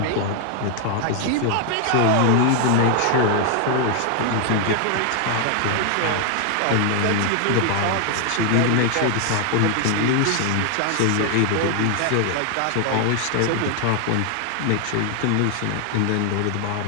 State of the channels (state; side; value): different; both; correlation 0.00